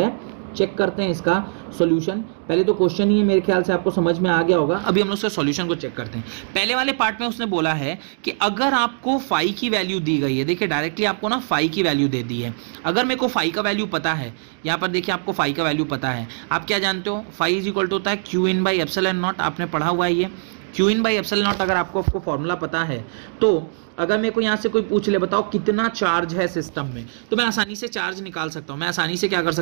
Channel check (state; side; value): silent; left; digital silence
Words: है, चेक करते हैं इसका सॉल्यूशन। पहले तो क्वेश्चन ही मेरे ख्याल से आपको समझ में आ गया होगा, अभी हम लोग उसका सॉल्यूशन को चेक करते हैं। पहले वाले पार्ट में उसने बोला है कि अगर आपको फाई की वैल्यू दी गई है, देखिए डायरेक्टली आपको ना फाई की वैल्यू दे दी है। अगर मेरे को फाई का वैल्यू पता है, यहाँ पर देखिए आपको फाई का वैल्यू पता है, आप क्या जानते हो? फाई इज इक्वल टू होता है Q/ε0, आपने पढ़ा हुआ है ये Q/ε0। अगर आपको फॉर्मूला पता है तो अगर मेरे को यहाँ से कोई पूछ ले बताओ कितना चार्ज है सिस्टम में, तो मैं आसानी से चार्ज निकाल सकता हूँ। मैं आसानी से क्या कर